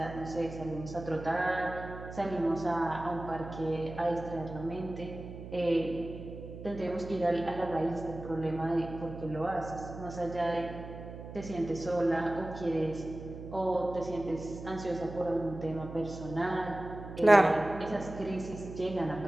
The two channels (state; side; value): noise; right; hum, 11 dB below the sound